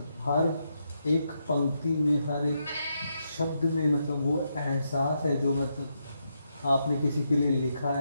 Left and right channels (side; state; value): both; inverted; correlation -0.81